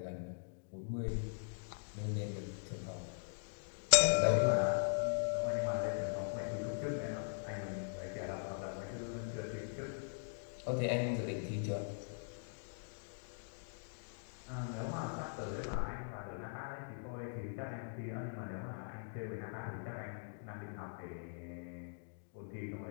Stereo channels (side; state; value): right; silent; digital silence